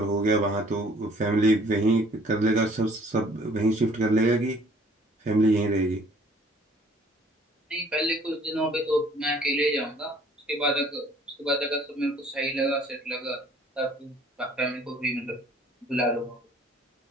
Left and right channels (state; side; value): normal; both; correlation 0.56